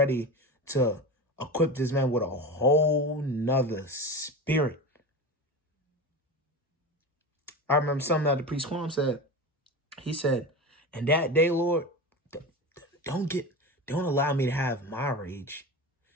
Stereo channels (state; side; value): normal; both; correlation 0.26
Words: to equip this man with a whole nother spirit. I remember something that the priest Quam said. He said, "And that day, Lord, don't allow me to have my rage.